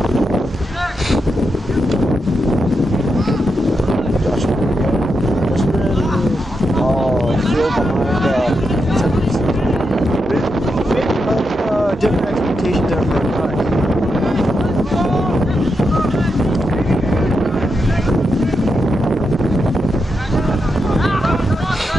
Different expectations there for our guys.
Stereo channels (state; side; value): normal; both; correlation 0.85